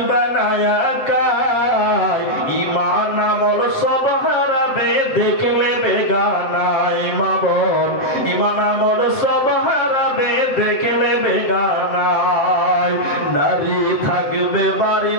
না একাই, ঈমান আমল সব হারাবে, দেখলে বেগানায় মা বোন, ঈমান আমল সব হারাবে, দেখলে বেগানায়। নারী থাকবে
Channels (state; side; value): late; right; 7.8 ms